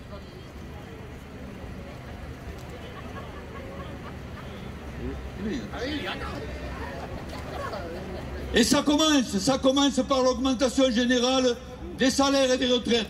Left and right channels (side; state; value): both; identical; correlation 1.00